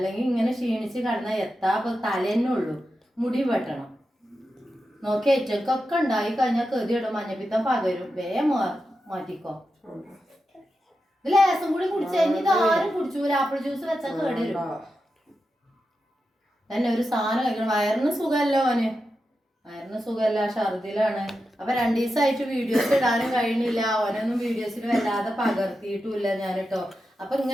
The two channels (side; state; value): both; normal; correlation 0.89